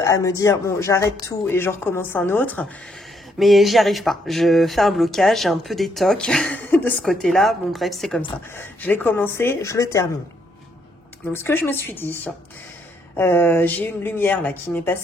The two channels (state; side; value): normal; both; correlation 0.73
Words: à me dire, bon, j'arrête tout et je recommence un autre. Mais j'y arrive pas. Je fais un blocage, j'ai un peu des tocs de ce côté-là. Bon bref, c'est comme ça. Je l'ai commencé, je le termine. Donc, ce que je me suis dit, j'ai une lumière là qui m'est